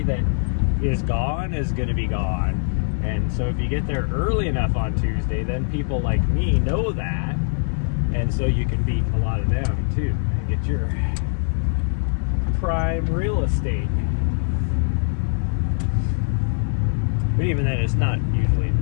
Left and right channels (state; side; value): silent; right; digital silence